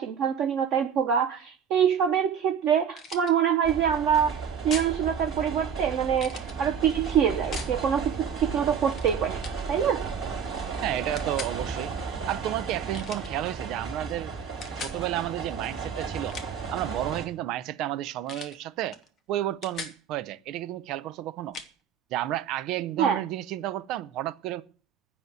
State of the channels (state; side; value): quieter; left; 7.9 dB